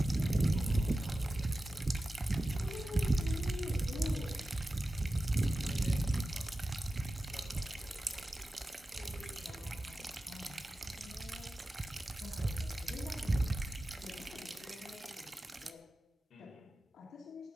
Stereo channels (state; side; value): normal; both; correlation 0.94